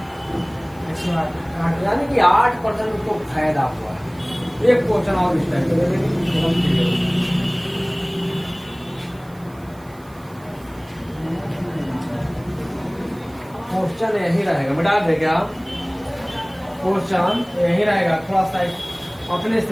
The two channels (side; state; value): right; noise; hiss, 27 dB below the sound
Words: 108। यानी कि 8% उसको फायदा हुआ है। एक क्वेश्चन और इस टाइप का क्वेश्चन यही रहेगा, मिटा दे क्या? क्वेश्चन यही रहेगा, थोड़ा सा अपने